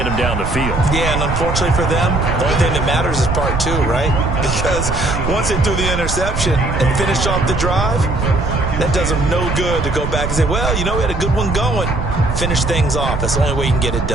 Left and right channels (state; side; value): noise; right; rumble, 4 dB below the sound